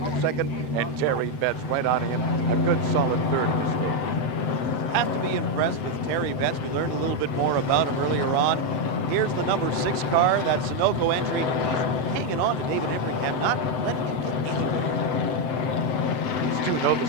in second, and Terry Betts right on him. A good, solid third in this game. Have to be impressed with Terry Betts. We learned a little bit more about him earlier on. Here's the number 6 car, that Sunoco entry. He's hanging on to David Embringham, not letting him get anywhere. These two know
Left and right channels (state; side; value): late; right; 7.8 ms